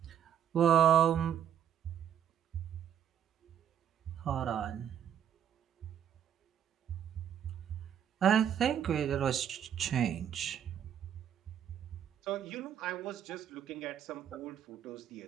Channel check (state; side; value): quieter; left; 9.4 dB